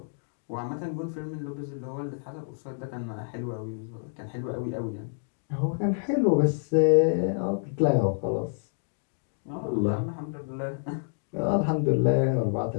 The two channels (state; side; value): silent; right; digital silence